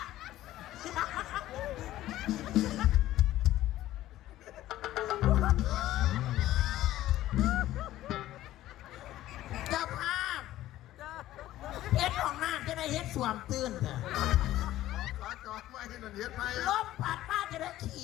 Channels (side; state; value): right; quieter; 14.5 dB